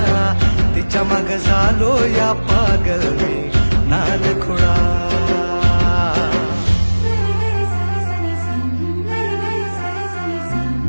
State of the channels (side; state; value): both; inverted; correlation -1.00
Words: तिच्या माग झालो या पागल मी नाद खुळा.